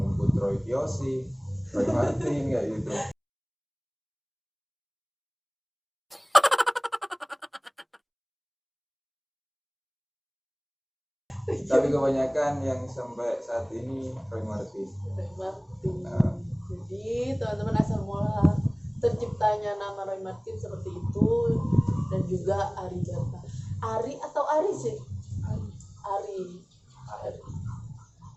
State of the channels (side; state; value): both; identical; correlation 1.00